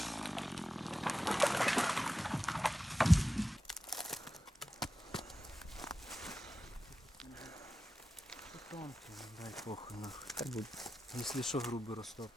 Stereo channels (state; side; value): normal; both; correlation 0.94